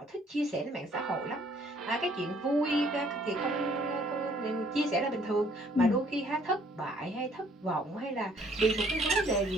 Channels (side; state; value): both; normal; correlation 0.62